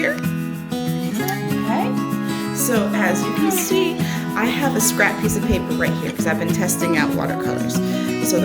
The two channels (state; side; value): identical; both; correlation 1.00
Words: Okay. So as you can see, I have a scrap piece of paper right here because I've been testing out watercolors. So